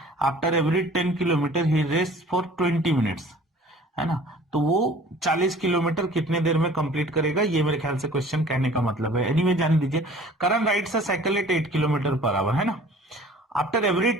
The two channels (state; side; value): normal; both; correlation 0.49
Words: after every 10 kilometre he rest for 20 minutes, है ना। तो वो 40 किलोमीटर कितने देर में कंप्लीट करेगा, ये मेरे ख्याल से क्वेश्चन कहने का मतलब है। एनीवे जान दीजिए, Karan rides a cycle at 8 kilometre per hour, है ना, आफ्टर एवरी